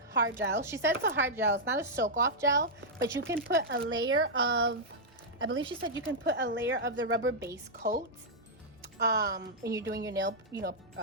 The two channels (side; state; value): both; normal; correlation -0.07